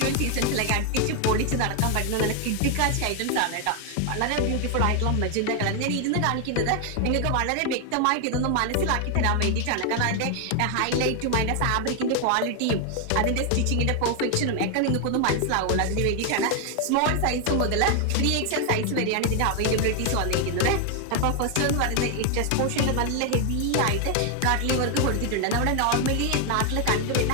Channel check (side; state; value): both; different; correlation 0.00